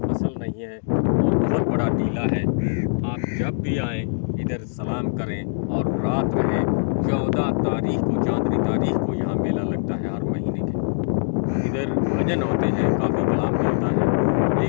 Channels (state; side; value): silent; right; digital silence